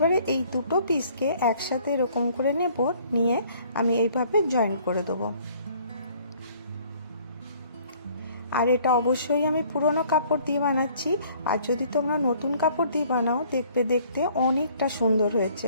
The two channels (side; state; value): both; inverted; correlation -0.58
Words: এই দুটো পিসকে একসাথে এরকম করে নেব, নিয়ে আমি এইভাবে জয়েন করে দেবো। আর এটা অবশ্যই আমি পুরনো কাপড় দিয়ে বানাচ্ছি। আর যদি তোমরা নতুন কাপড় দিয়ে বানাও দেখবে দেখতে অনেকটা সুন্দর হয়েছে।